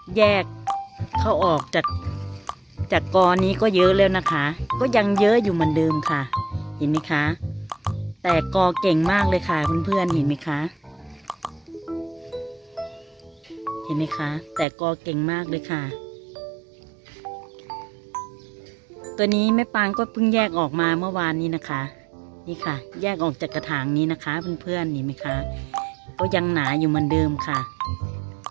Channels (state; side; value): drops out; left; at 14.7 s